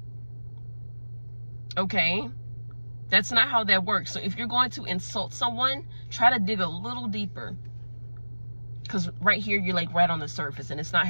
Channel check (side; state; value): both; inverted; correlation -1.00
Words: Okay? That's not how that works. So if you're going to insult someone, try to dig a little deeper. Because right here, you're like right on the surface and it's not